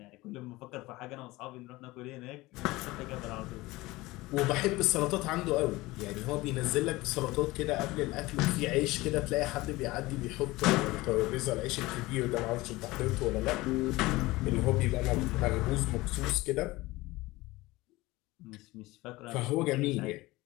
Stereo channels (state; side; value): quieter; right; 20.2 dB